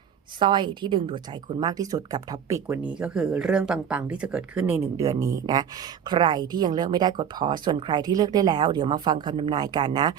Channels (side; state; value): left; quieter; 8.4 dB